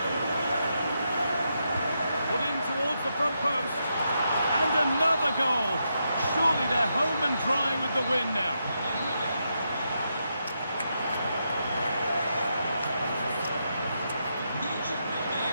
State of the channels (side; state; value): both; inverted; correlation -0.83